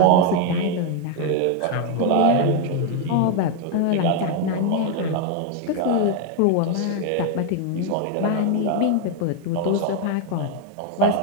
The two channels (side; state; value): both; different; correlation 0.01